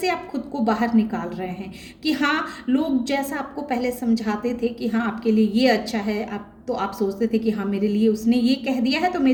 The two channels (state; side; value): identical; both; correlation 1.00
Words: आप खुद को बाहर निकाल रहे हैं कि हाँ, लोग जैसा आपको पहले समझाते थे कि हाँ आपके लिए ये अच्छा है, आप सोचते थे कि हाँ मेरे लिए उसने ये कह दिया है तो